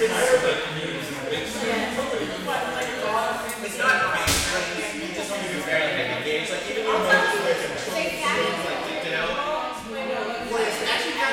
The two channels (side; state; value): both; identical; correlation 1.00